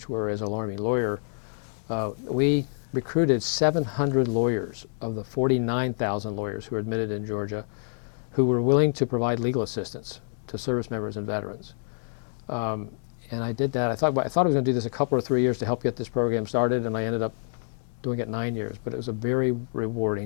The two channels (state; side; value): silent; right; digital silence